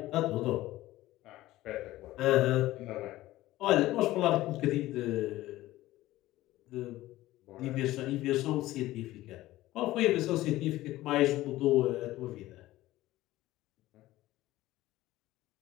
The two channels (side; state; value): right; quieter; 16.4 dB